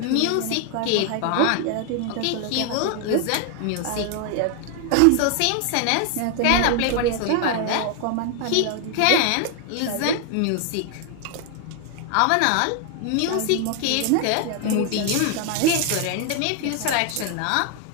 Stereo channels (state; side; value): different; both; correlation 0.00